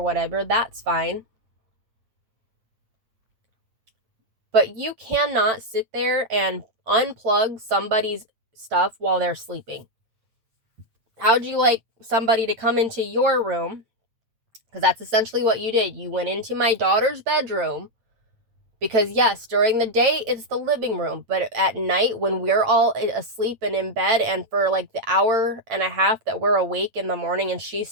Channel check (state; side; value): late; left; 8.9 ms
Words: whatever. That's fine. But you cannot sit there and unplug somebody's stuff while they're sleeping. How'd you like somebody to come into your room? Because that's essentially what you did. You went into my daughter's bedroom, because yes, during the day it's the living room, but at night when we're all asleep and in bed, and for like the hour and a half that we're awake in the morning and she's